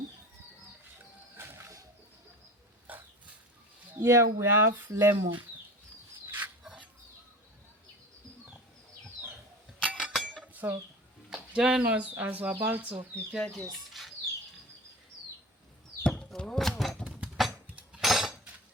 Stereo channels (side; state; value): both; normal; correlation 0.35